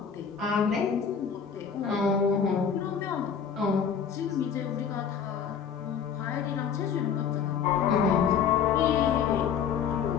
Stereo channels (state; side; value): quieter; right; 7.2 dB